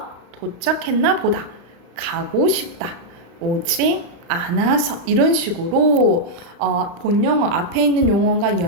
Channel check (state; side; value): late; left; 35 ms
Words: 도착했나 보다. 가고 싶다. 오지 않아서 이런 식으로 본용어 앞에 있는 용어가